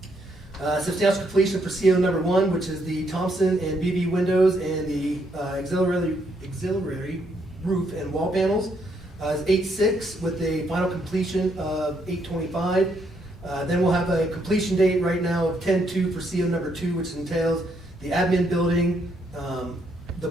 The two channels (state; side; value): normal; both; correlation 0.74